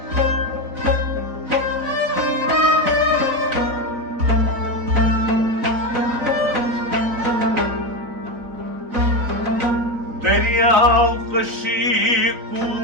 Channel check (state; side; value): late; left; 4.2 ms